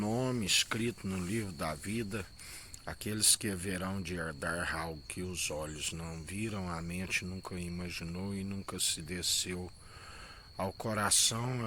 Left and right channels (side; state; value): both; identical; correlation 1.00